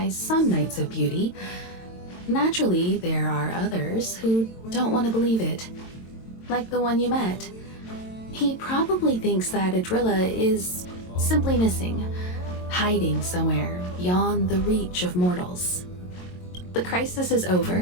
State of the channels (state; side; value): late; right; 22 ms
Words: some Knights of Beauty. Naturally, there are others who don't want to believe it. Like the one you met. He probably thinks that Adrilla is simply missing, hiding somewhere beyond the reach of mortals. The crisis is